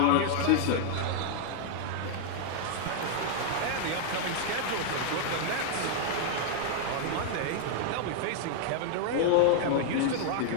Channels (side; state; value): both; different; correlation 0.00